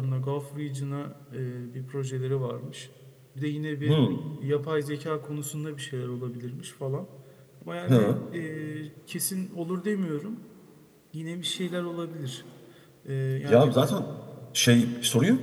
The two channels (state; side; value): identical; both; correlation 1.00